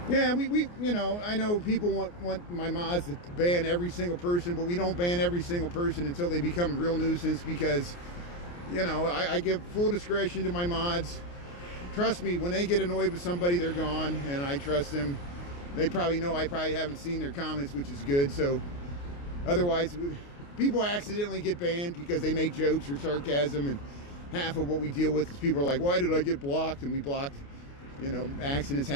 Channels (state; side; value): late; right; 29 ms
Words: Yeah, we you know, I know people want my mods to ban every single person, but we don't ban every single person until they become a real nuisance, because, you know, I give full discretion to my mods. Trust me, when they get annoyed with somebody, they're gone, and I trust them. They probably know I probably haven't seen their comments, which is good. So otherwise, people accidentally get banned because they make jokes or sarcasm, and half of what we deal with is people are like, why did I get blocked? And we blocked, you know, accidents